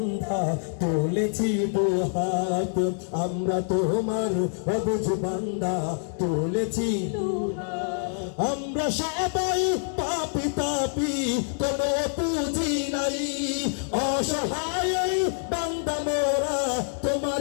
তুলেছি দুহাত, আমরা তোমার অবুঝ বান্ধা তুলেছি দুহাত। আমরা সবাই পাপী তাপী, কোনো পুঁজি নাই, অসহায় বান্দা মোরা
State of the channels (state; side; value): silent; right; digital silence